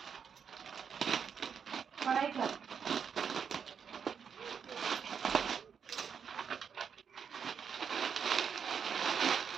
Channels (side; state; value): left; quieter; 7.0 dB